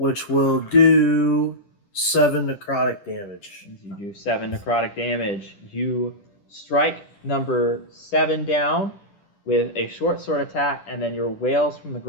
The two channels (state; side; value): late; right; 10 ms